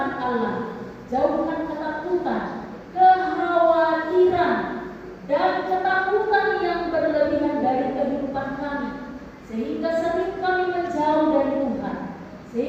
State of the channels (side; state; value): both; identical; correlation 1.00